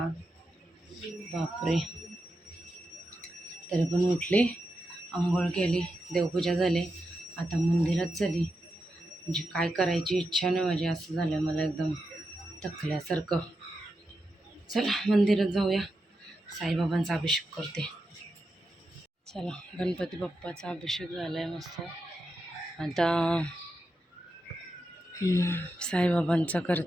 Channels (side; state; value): both; normal; correlation 0.88